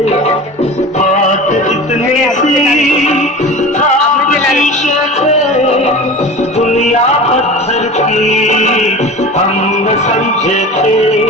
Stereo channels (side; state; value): both; normal; correlation 0.34